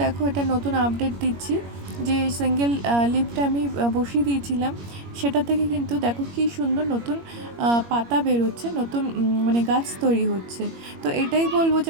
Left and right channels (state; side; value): late; left; 21 ms